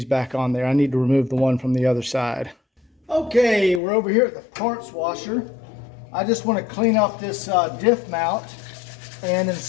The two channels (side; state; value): right; drops out; at 3.8 s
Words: back on there. I need to remove the one from the other side. Okay, we're over here at the parts washer. I just want to clean up this diff mount and